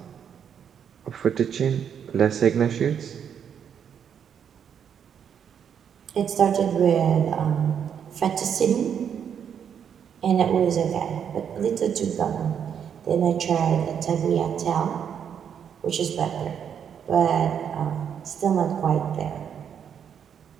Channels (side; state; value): left; quieter; 8.1 dB